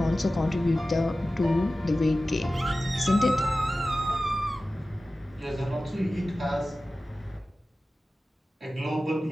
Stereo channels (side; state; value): both; normal; correlation 0.95